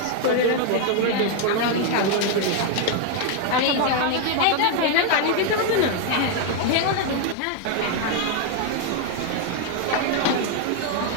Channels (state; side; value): different; both; correlation 0.01